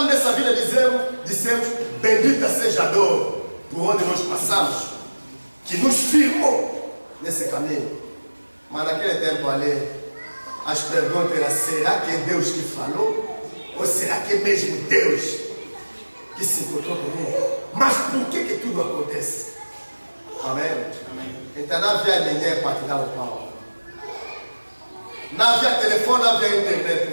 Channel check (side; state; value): both; inverted; correlation -1.00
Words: nessa vida, dissemos, bendita seja a dor por onde nós passamos, que nos firmou nesse caminho. Mas naquele tempo ali, as perguntas eram, será que é Deus que falou? Ou será que é mesmo Deus que se encontrou comigo? Mas por que tudo acontece? Amém? Amém. Então não havia ninguém para te dar o pau. Não havia telefone, não havia internet.